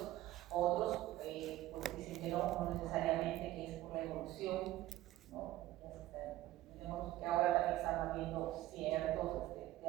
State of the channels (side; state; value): left; quieter; 15.4 dB